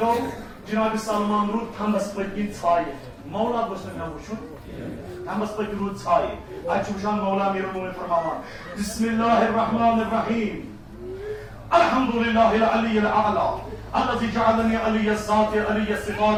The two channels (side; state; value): both; identical; correlation 1.00